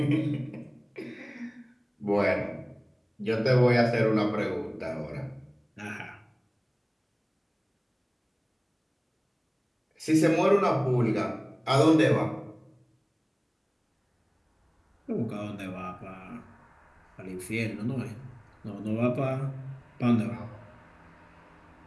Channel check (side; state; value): both; identical; correlation 1.00